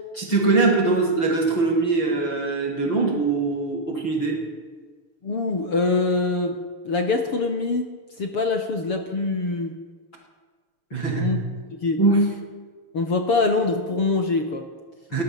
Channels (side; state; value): right; late; 7.0 ms